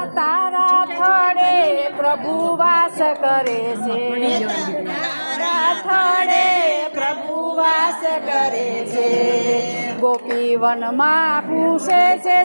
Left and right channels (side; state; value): both; inverted; correlation -1.00